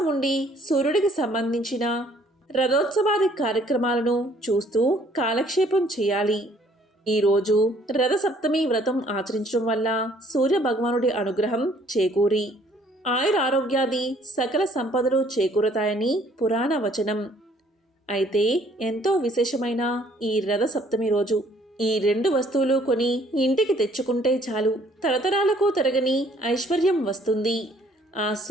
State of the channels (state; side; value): normal; both; correlation 0.61